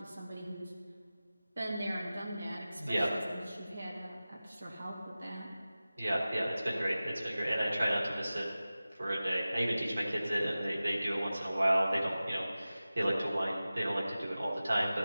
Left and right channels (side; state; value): both; inverted; correlation -0.96